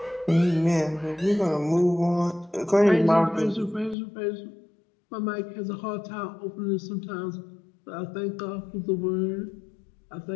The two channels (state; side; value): drops out; right; at 4.0 s